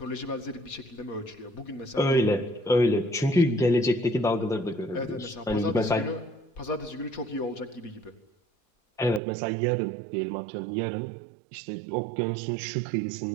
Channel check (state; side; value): drops out; left; at 9.2 s